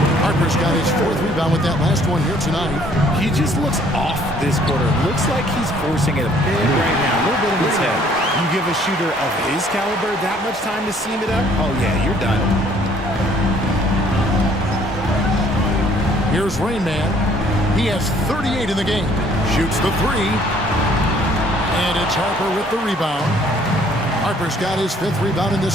Harper's got his 4th rebound with that last one here tonight. He just looks off this quarter. Looks like he's forcing it a bit right now. A little bit in his head. You give a shooter of his caliber that much time to seam it up? Oh, yeah, you're done. Here's Rain Man. He has 38 in the game. Shoots the 3. And it's Harper with the rebound. Harper's got his 5th rebound in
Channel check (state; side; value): normal; both; correlation 0.60